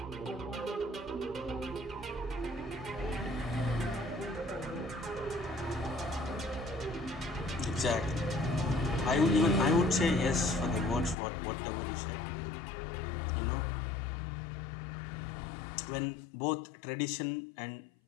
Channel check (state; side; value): drops out; right; at 11.2 s